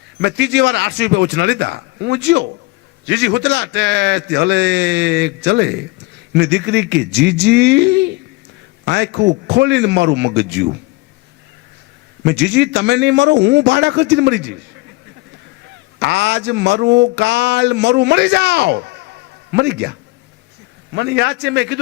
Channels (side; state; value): right; quieter; 22.5 dB